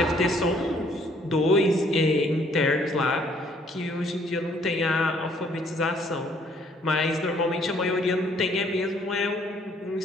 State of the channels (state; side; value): normal; both; correlation 0.63